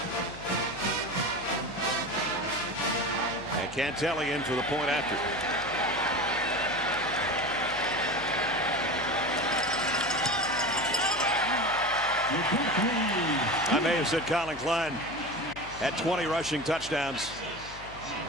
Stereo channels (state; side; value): noise; left; hum, 17 dB below the sound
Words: And Cantelli in for the point after. I may have said Colin Klein had 20 rushing touchdowns,